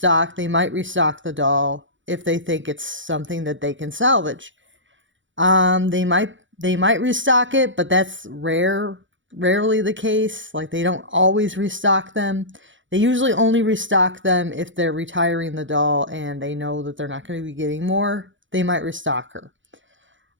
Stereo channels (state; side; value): late; left; 0.55 ms